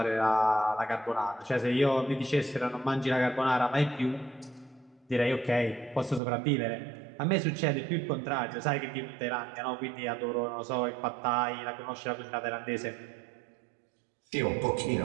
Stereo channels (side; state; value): left; drops out; at 6.2 s